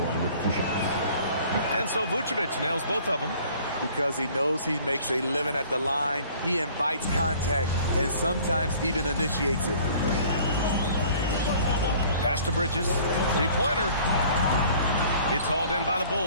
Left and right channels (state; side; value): inverted; both; correlation -0.52